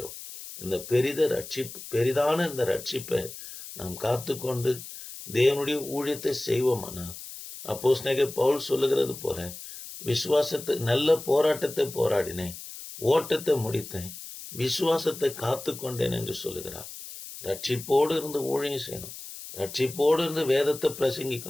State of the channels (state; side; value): noise; left; hiss, 12 dB below the sound